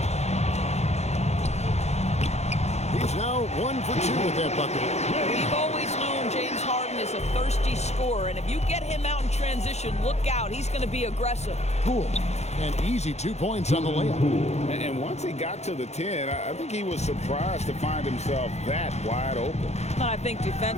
He's now 1 for 2 with that bucket. We've always known James Harden is a thirsty scorer, and if you get him out in transition, look out. He's going to be aggressive. Poole. An easy 2 points on the layup. And once he got to the 10, I think he was surprised to find himself that wide open. I think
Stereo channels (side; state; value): right; late; 0.32 ms